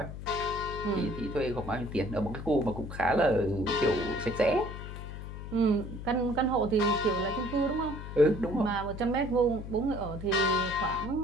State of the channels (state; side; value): noise; left; hum, 9 dB below the sound